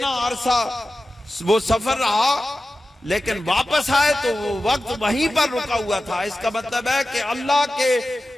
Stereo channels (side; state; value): both; normal; correlation 0.94